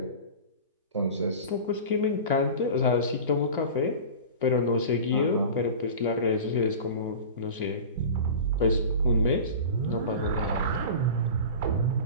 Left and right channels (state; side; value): inverted; both; correlation -0.34